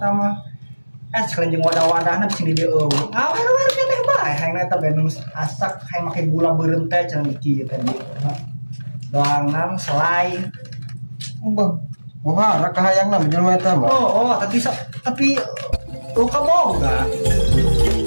mah. Sekalian jeung wadah-wadahna bisa di dieu. Awer-awer keneh bae hayang eta bae nu asak hayang make gula beureum teh cenah kieu tadi. Doangan selai. Bang. Wah, raka hayangna jelema eta mah. Tapi luka boga.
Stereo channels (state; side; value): inverted; both; correlation -1.00